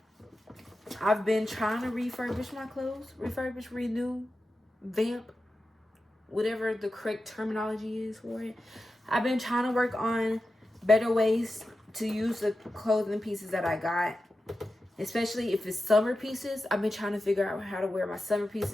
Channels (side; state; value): both; normal; correlation 0.92